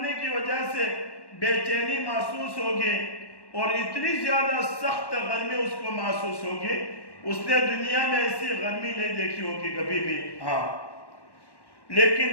کی وجہ سے بے چینی محسوس ہوگی اور اتنی زیادہ سخت گرمی اس کو محسوس ہوگی، اس نے دنیا میں ایسی گرمی نہیں دیکھی ہوگی کبھی بھی، ہاں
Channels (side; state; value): right; late; 1.1 ms